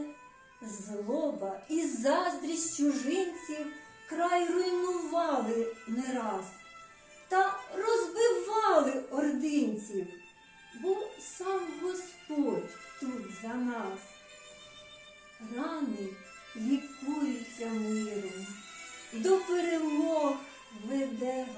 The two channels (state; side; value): identical; both; correlation 1.00